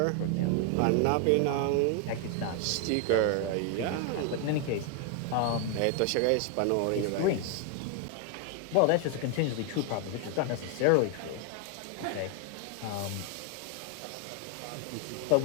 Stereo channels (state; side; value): different; both; correlation 0.00